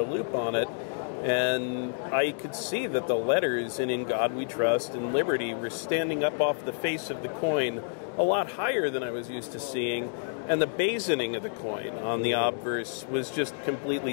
loop on it, and I could see that the letters in God We Trust and Liberty were standing up off the face of the coin a lot higher than I was used to seeing, and the basoning of the coin on the obverse was just completely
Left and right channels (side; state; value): right; silent; digital silence